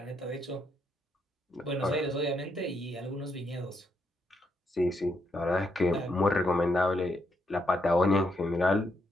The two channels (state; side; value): normal; both; correlation 0.78